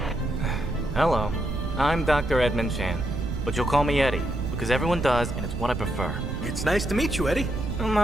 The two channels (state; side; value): noise; right; rumble, 4 dB below the sound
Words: Hello, I'm Dr. Edmund Chan, but you'll call me Eddie, because everyone does, and it's what I prefer. It's nice to meet you, Eddie.